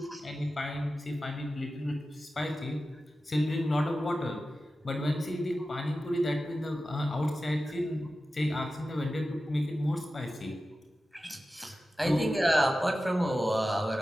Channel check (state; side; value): normal; both; correlation 0.94